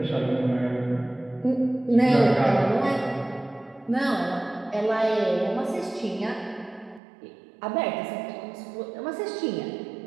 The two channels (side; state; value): left; drops out; at 7.0 s